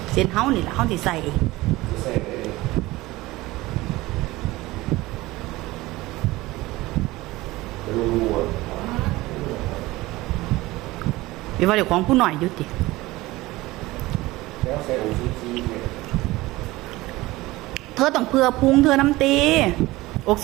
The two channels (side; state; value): left; quieter; 19.3 dB